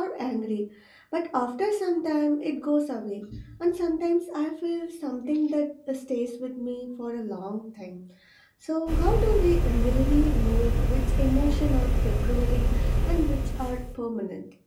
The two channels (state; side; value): identical; both; correlation 1.00